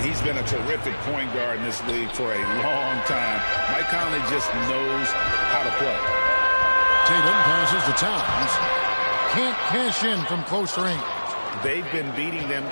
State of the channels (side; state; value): both; inverted; correlation -1.00